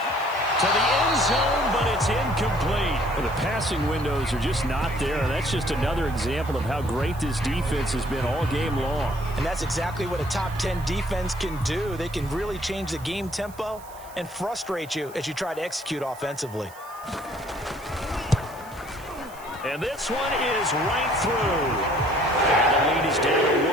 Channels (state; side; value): noise; right; hiss, 21 dB below the sound